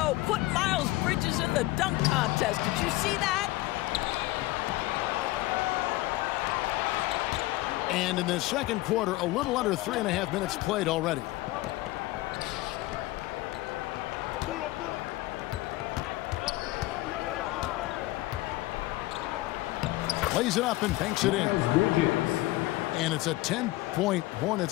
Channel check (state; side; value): quieter; right; 18.7 dB